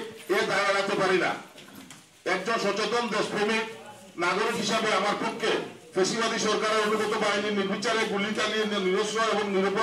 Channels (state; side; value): identical; both; correlation 1.00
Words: এ দায় এড়াতে পারি না। একজন সচেতন দেশপ্রেমিক নাগরিক হিসাবে আমার পক্ষে ফ্যাসিবাদী সরকারের অনুগত বাহিনীর নির্বিচারে গুলি চালিয়ে নিরস্ত্র এবং